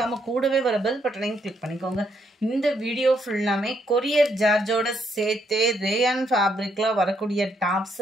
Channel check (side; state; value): both; normal; correlation 0.74